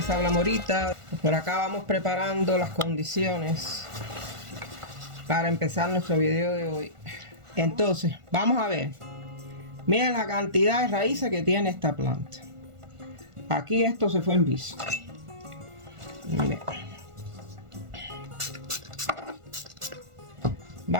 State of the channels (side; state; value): left; late; 1.4 ms